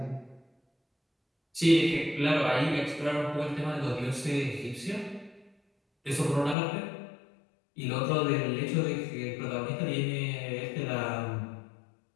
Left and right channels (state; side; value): drops out; right; at 6.6 s